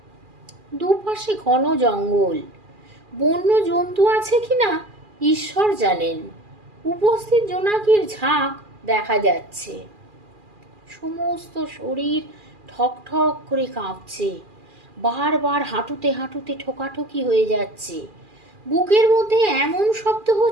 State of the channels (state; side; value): late; left; 2.4 ms